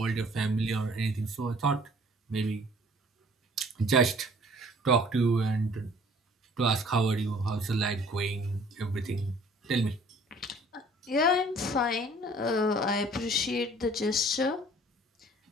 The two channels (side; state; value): both; normal; correlation 0.54